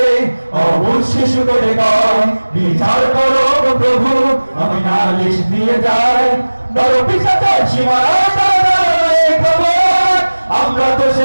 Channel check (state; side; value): inverted; both; correlation -1.00